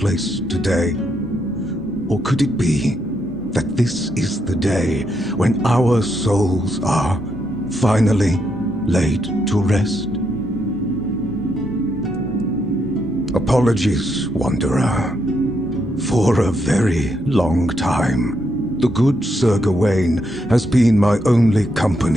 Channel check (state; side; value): normal; both; correlation 0.79